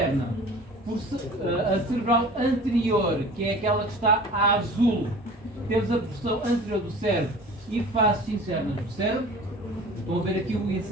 a cerebral anterior, que é aquela que está a azul, temos a porção anterior do cérebro e faces internas do cérebro. Estão a ver aqui o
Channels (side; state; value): both; normal; correlation 0.42